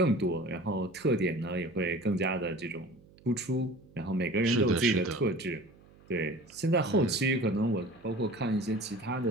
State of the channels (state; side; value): noise; right; hum, 26 dB below the sound